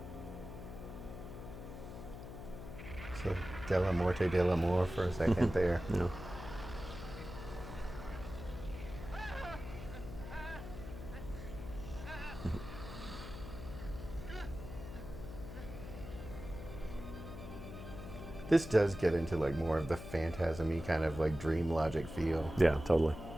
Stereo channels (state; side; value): noise; left; hum, 10 dB below the sound